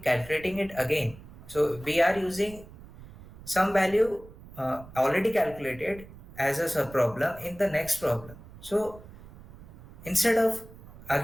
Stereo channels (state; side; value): noise; right; rumble, 18 dB below the sound